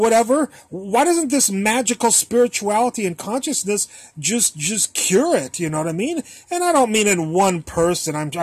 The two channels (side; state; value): both; identical; correlation 1.00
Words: why doesn't this magical spirituality and consciousness just cure it? You know what I mean? And I don't mean in one person.